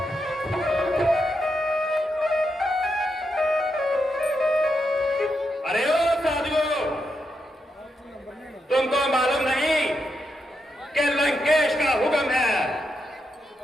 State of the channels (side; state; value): both; normal; correlation 0.84